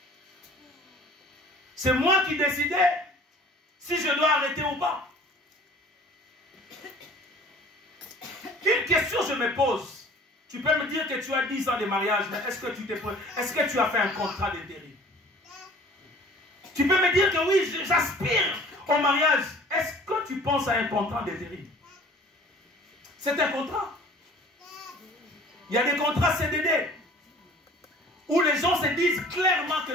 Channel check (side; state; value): both; normal; correlation 0.48